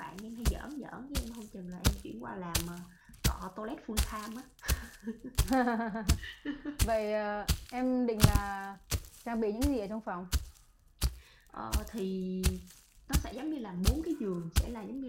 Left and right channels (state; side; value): identical; both; correlation 1.00